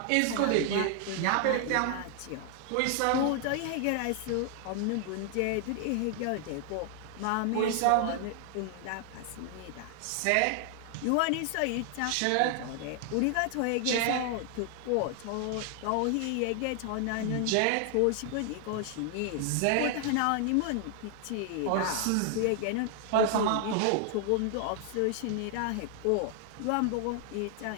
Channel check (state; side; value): different; both; correlation 0.00